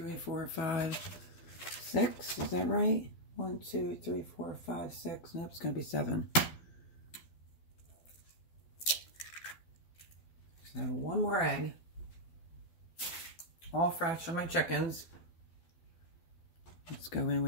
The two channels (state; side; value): late; right; 12 ms